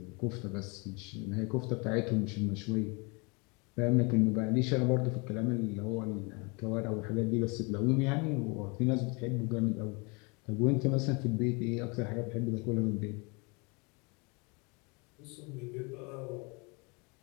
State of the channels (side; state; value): right; quieter; 30.2 dB